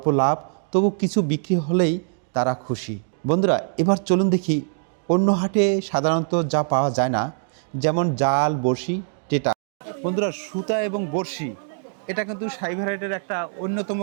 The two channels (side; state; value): left; silent; digital silence